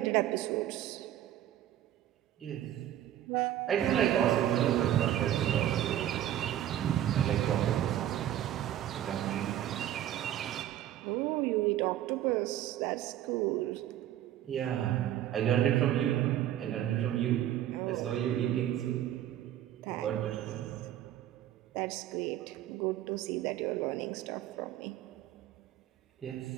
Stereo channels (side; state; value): left; quieter; 12.0 dB